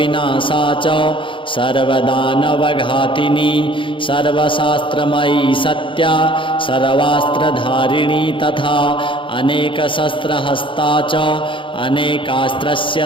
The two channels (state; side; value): late; right; 0.25 ms